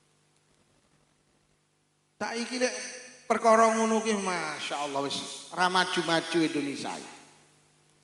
Saiki lek perkara ngono ki masyaallah wis ra maju-maju Indonesia.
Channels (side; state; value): both; identical; correlation 1.00